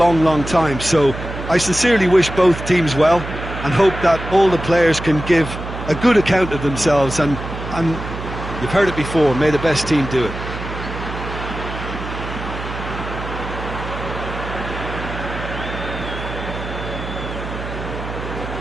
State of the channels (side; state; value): right; noise; hum, 8 dB below the sound